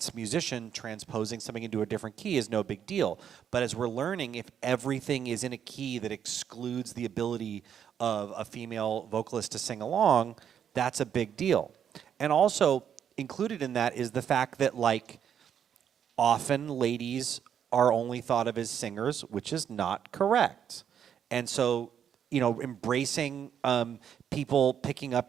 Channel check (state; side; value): quieter; left; 8.7 dB